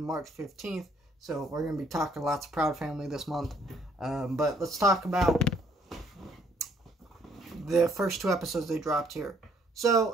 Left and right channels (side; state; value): both; normal; correlation 0.65